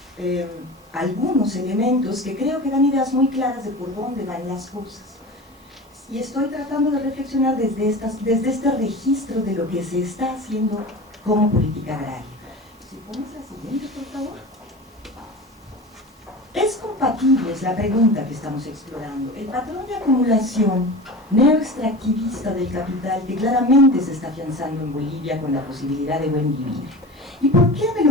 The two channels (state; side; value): normal; both; correlation 0.32